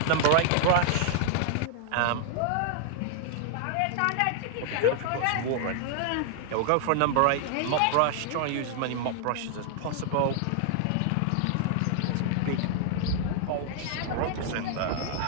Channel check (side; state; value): both; different; correlation 0.00